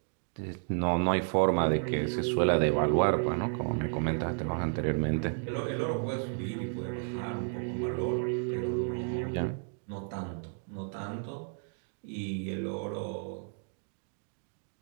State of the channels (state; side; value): silent; left; 56 dB below the other